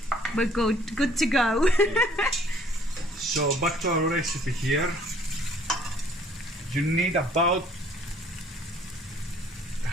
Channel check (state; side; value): normal; both; correlation 0.58